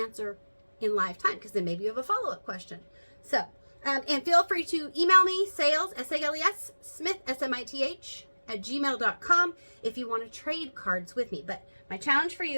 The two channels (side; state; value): both; inverted; correlation -1.00